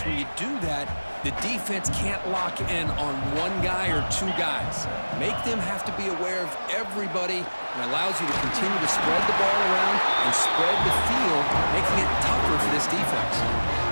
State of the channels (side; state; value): both; inverted; correlation -1.00